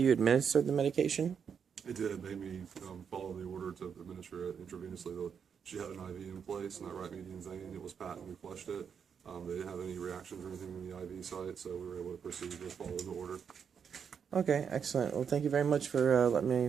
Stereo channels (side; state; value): left; quieter; 7.0 dB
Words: administered the medication? It did. It made me follow the order to administer it intravenously. She had an IV in place, and that right median vein, it was patent. We flushed it. They didn't have any reactions or anything in the IV site, so we were able to proceed with following the order. Okay, excellent. Well, thank you very much for letting